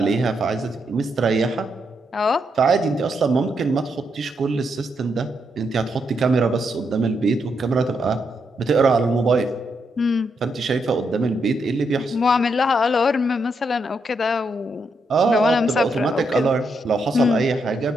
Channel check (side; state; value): both; normal; correlation 0.80